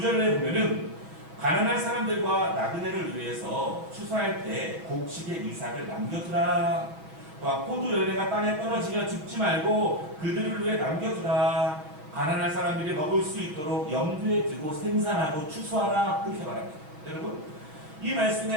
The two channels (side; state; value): left; late; 6.5 ms